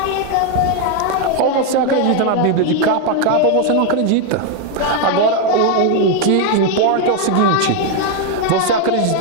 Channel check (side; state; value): both; different; correlation 0.01